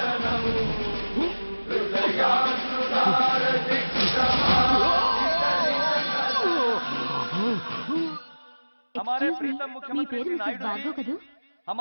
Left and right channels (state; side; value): inverted; both; correlation -1.00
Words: हमारे प्रीतम मुख्यमंत्री श्री नायडू जी